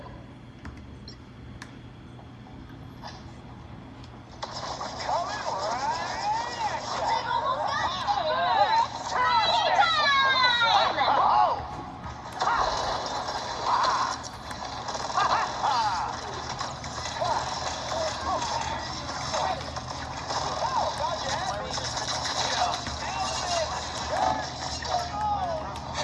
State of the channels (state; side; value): identical; both; correlation 1.00